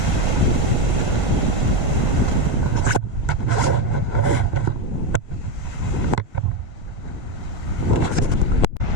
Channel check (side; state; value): left; late; 1.7 ms